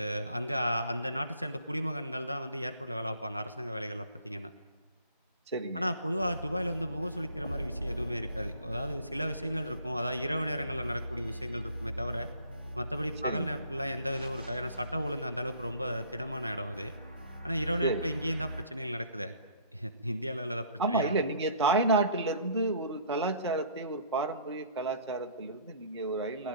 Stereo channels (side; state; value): both; inverted; correlation -0.55